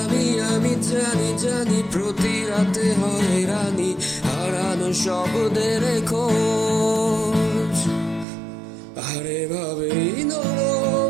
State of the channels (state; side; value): drops out; left; at 8.2 s